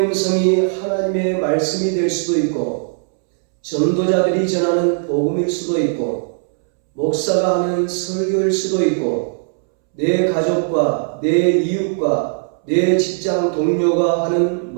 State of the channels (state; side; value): silent; left; 67 dB below the other